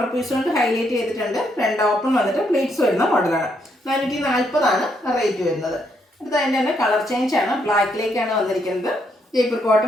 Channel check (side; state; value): both; normal; correlation 0.75